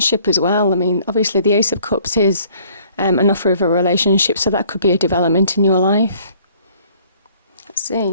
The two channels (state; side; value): inverted; both; correlation -0.58